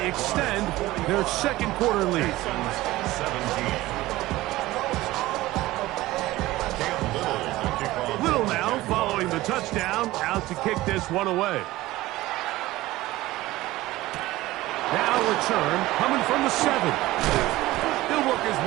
extend their second quarter lead. 17. Little now following the touchdown, out to kick this one away. Now return coming from the 7. He'll work his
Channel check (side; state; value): left; quieter; 17.6 dB